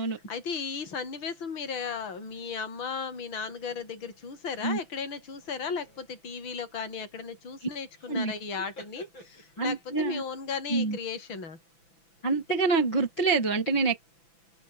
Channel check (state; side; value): late; right; 6.0 ms